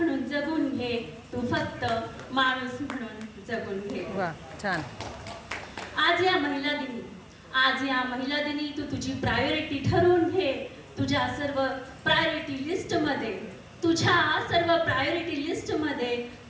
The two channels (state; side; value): identical; both; correlation 1.00